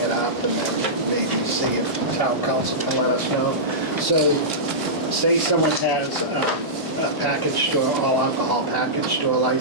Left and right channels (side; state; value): both; normal; correlation -0.15